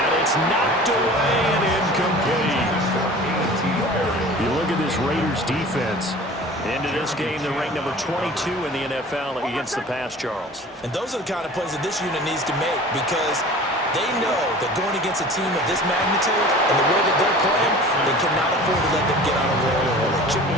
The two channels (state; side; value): normal; both; correlation 0.42